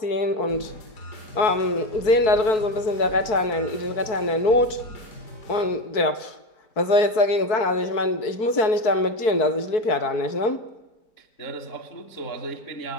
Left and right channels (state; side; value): late; right; 4.6 ms